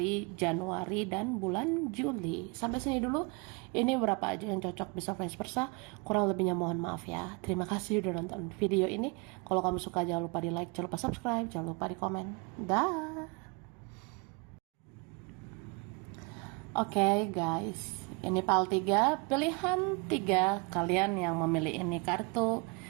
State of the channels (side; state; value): left; quieter; 30.9 dB